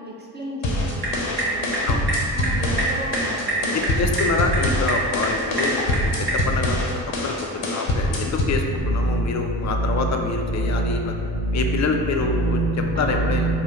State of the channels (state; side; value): normal; both; correlation 0.32